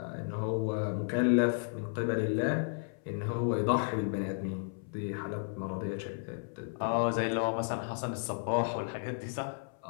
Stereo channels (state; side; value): silent; right; 56 dB below the other